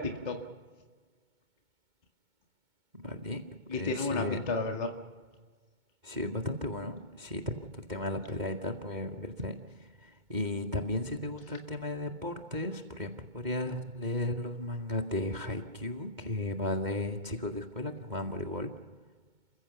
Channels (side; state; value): left; late; 2.2 ms